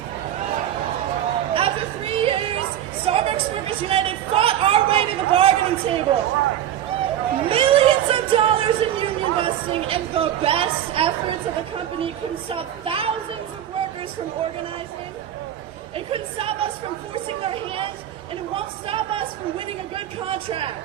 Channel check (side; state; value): left; quieter; 11.0 dB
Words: After 3 years, Starbucks Workers United fought our way to the bargaining table. Millions of dollars in union busting and the best efforts of the company couldn't stop thousands of workers from organizing. It couldn't stop us from forcing their hand, and it won't stop us from winning a good